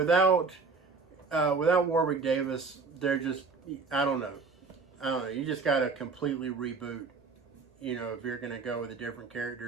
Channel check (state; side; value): quieter; left; 4.5 dB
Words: Warwick Davis, they're just, I don't know. You just got to completely reboot, if you're going to go with a different